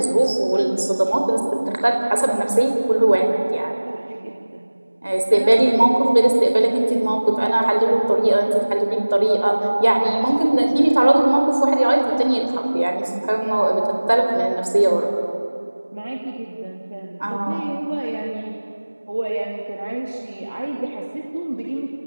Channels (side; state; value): both; inverted; correlation -1.00